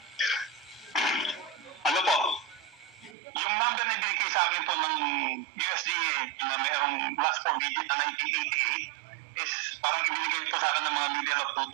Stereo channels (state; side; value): drops out; left; at 3.2 s